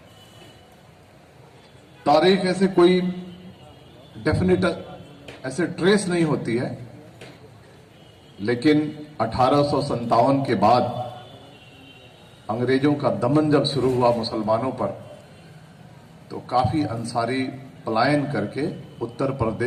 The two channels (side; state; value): both; identical; correlation 1.00